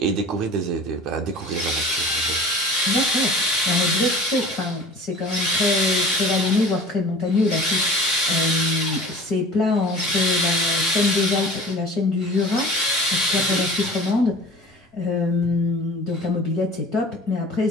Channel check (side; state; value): both; normal; correlation 0.40